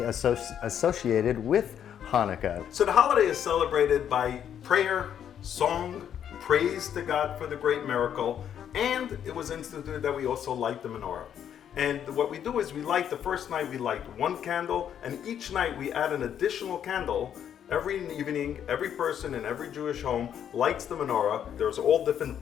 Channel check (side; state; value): right; quieter; 9.3 dB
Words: associated with Hanukkah. So the holiday is celebrated by prayer, song, praise to God for the great miracle, and it was instituted that we also light the menorah. And what we do is we light, the first night we light one candle, and each night we add an additional candle. Every evening, every person in every Jewish home lights the menorah. There's all different